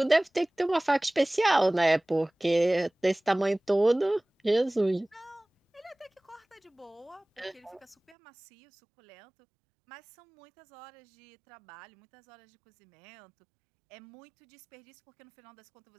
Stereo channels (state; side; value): drops out; left; at 8.2 s